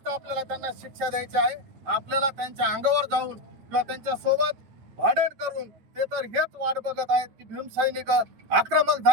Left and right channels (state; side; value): late; left; 9.0 ms